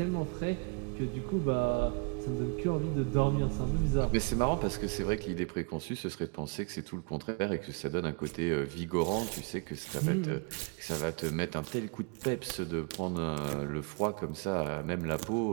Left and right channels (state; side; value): quieter; left; 33.9 dB